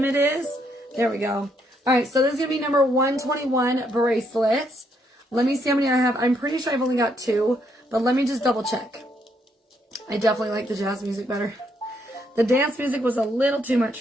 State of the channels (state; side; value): normal; both; correlation 0.74